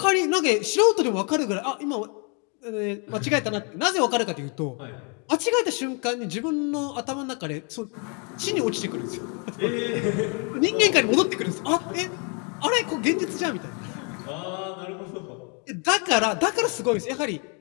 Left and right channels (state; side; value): quieter; right; 36.2 dB